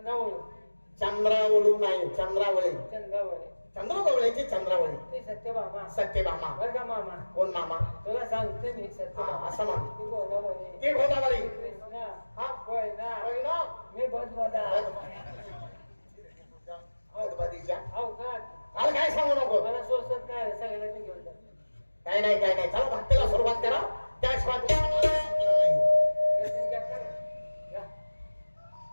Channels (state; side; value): inverted; both; correlation -1.00